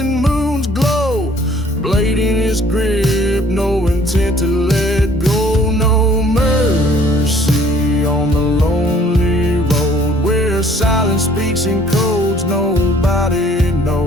moon's glow. Blade in his grip, no intent to let go. No mercy on the lonely road where silence speaks in codes nobody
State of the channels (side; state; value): both; normal; correlation 0.57